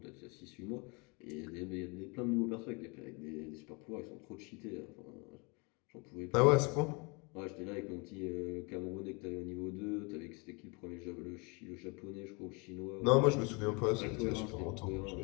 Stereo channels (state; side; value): quieter; right; 30.3 dB